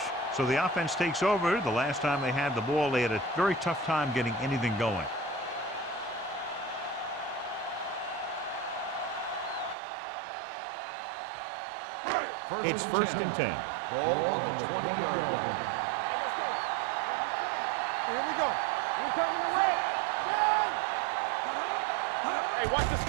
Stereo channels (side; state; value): left; drops out; at 9.8 s